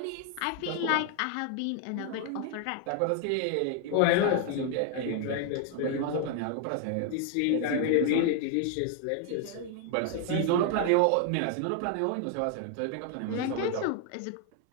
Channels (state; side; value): different; both; correlation 0.00